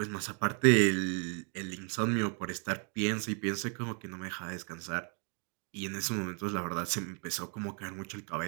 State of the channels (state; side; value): quieter; left; 38.8 dB